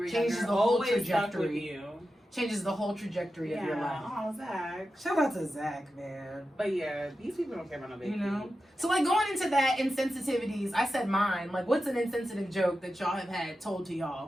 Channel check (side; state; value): both; normal; correlation 0.91